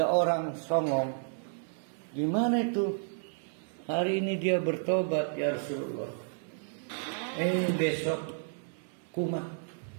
orang songong. Gimana itu? Hari ini dia bertobat, ya Rasulullah. Besok kumat.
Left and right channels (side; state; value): left; silent; 57 dB below the other